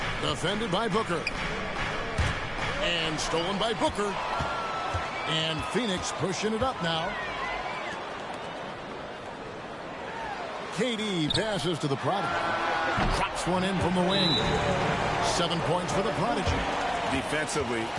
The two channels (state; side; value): identical; both; correlation 1.00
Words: defended by Booker. And stolen by Booker. And Phoenix pushing it up now. KD passes to the Prodigy. Drops one in from the wing. 7 points for the Prodigy. Defensively,